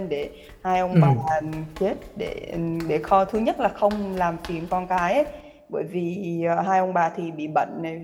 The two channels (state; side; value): identical; both; correlation 1.00